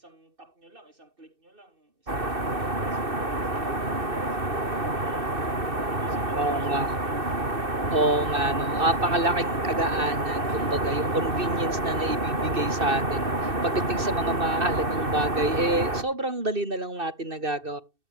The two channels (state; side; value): late; left; 2.6 ms